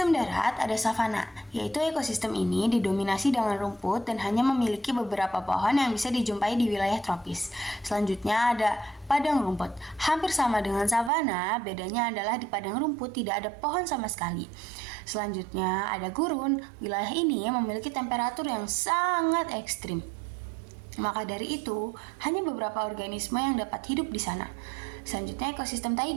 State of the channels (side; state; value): left; drops out; at 11.1 s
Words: darat ada savana, yaitu ekosistem ini didominasi dengan rumput dan hanya memiliki beberapa pohon yang bisa dijumpai di wilayah tropis. Selanjutnya ada padang rumput. Hampir sama dengan savana, bedanya adalah di padang rumput tidak ada pohon sama sekali. Selanjutnya ada gurun. Wilayah ini memiliki temperatur yang sangat ekstrim. Maka dari itu, hanya beberapa organisme yang dapat hidup di sana. Selanjutnya ekosistem